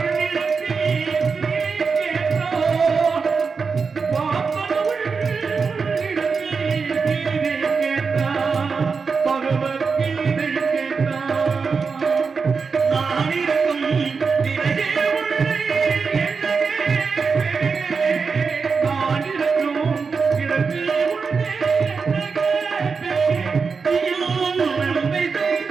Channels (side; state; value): left; quieter; 5.1 dB